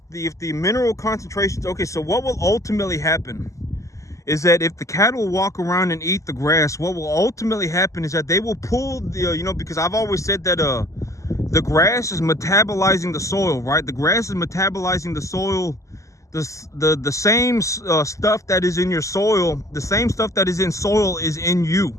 the mineral concentrations, okay, so what will ultimately happen is that if the cattle walk around and eat the grass, what will ultimately happen is that they will pull the, because I've always said that the grass is metabolizing the soil, right? The grass is metabolizing the soil. The same stuff that is in your soil, the same stuff that is in soil is in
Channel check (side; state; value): right; late; 0.16 ms